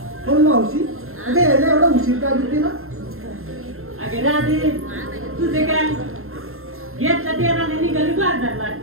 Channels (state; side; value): late; left; 0.61 ms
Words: पण मावशी अगं यायला एवढा उशीर का घेते ना? अगे राधे तुझे काय घेतला तेराने निघाली बाजारला